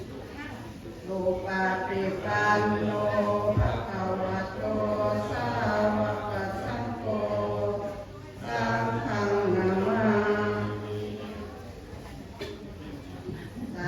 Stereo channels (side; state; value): both; identical; correlation 1.00